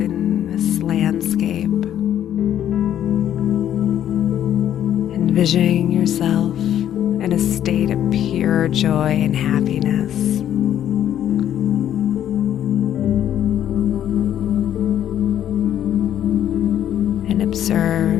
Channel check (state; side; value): quieter; right; 10.8 dB